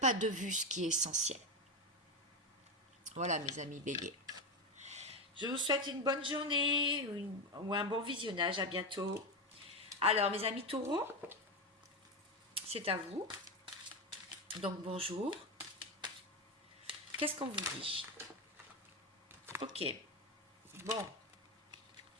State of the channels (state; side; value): normal; both; correlation 0.14